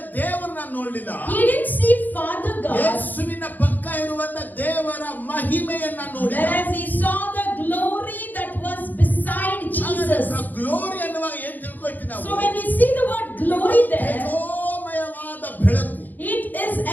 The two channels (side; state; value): right; late; 0.085 ms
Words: ದೇವರನ್ನ ನೋಡಲಿಲ್ಲ, He didn't see Father God, ಯೇಸುವಿನ ಪಕ್ಕ ಇರುವಂತ ದೇವರ ಮಹಿಮೆಯನ್ನ ನೋಡಿದ. whereas he saw the glory that was beside Jesus. Glory ಅನ್ನುವಾಗ ಏನ್ ತಿಳ್ಕೊಳ್ತೀವಿ ನಾವು? So when we see the word glory there, ತೇಜೋಮಯವಾದ ಬೆಳಕು. it is